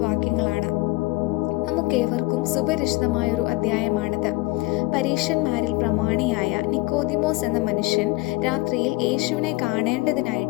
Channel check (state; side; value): quieter; right; 22.3 dB